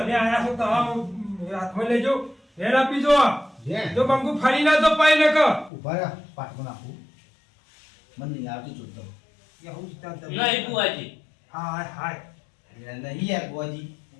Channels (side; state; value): right; drops out; at 5.7 s